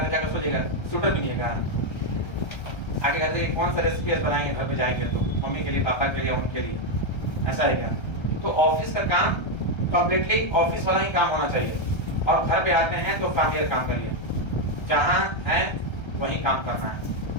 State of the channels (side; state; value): right; late; 1.3 ms